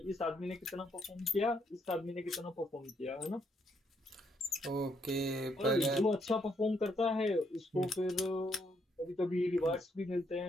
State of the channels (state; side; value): normal; both; correlation 0.74